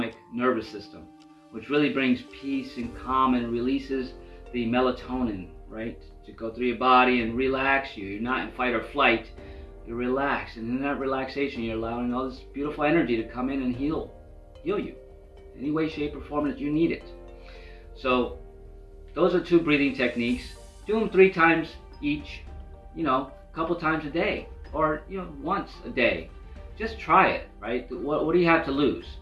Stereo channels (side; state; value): both; identical; correlation 1.00